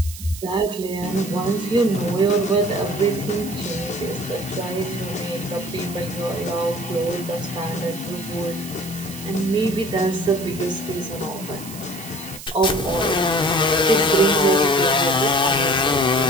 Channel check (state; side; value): noise; right; hiss, 13 dB below the sound